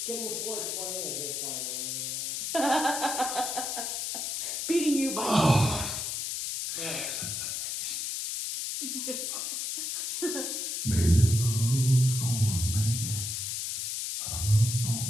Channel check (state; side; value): noise; left; hiss, 3 dB below the sound